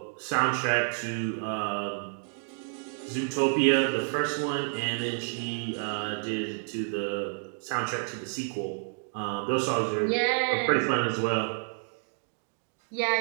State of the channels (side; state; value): left; silent; 57 dB below the other